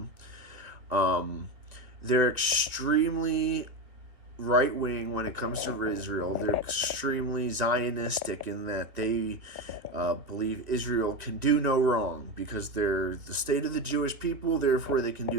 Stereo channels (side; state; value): left; late; 2.2 ms